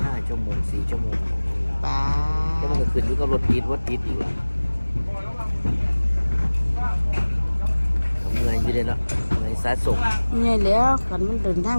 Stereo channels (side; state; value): both; inverted; correlation -1.00